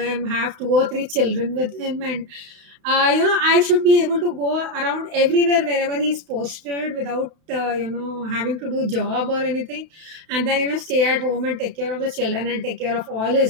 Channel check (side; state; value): left; late; 32 ms